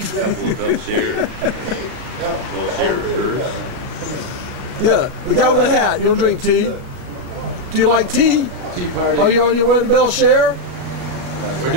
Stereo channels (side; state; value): left; late; 36 ms